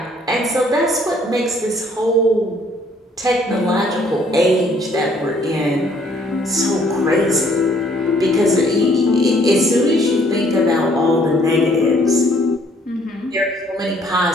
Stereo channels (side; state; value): both; normal; correlation 0.63